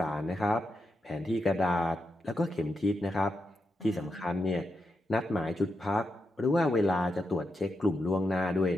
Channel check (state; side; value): normal; both; correlation 0.86